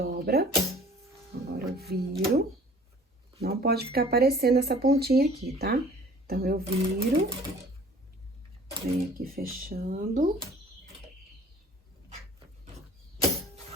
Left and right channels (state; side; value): normal; both; correlation 0.50